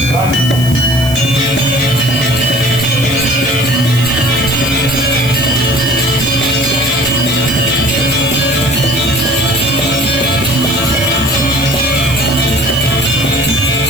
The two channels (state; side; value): noise; right; hiss, 12 dB below the sound